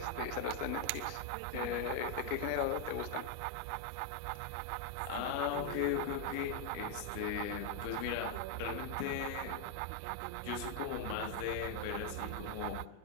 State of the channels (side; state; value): both; different; correlation 0.01